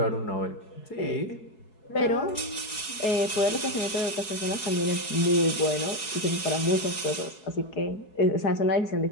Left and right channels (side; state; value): right; late; 4.7 ms